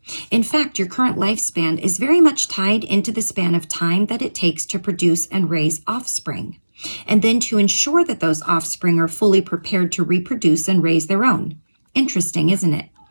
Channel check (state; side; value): inverted; both; correlation -1.00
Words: In fact, your current lifespan is very much tied into the span of time that it takes to produce and raise offspring, and then to ensure that those offspring are fully prepared to reproduce and raise their own. Interesting, isn't it?